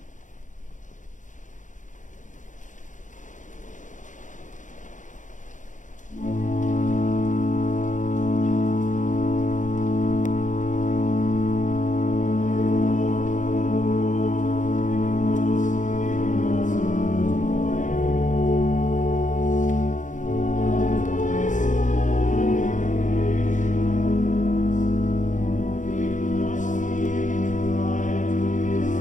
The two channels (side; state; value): right; late; 0.36 ms